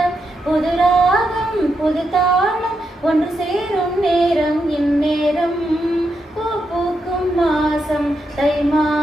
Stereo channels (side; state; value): both; normal; correlation 0.84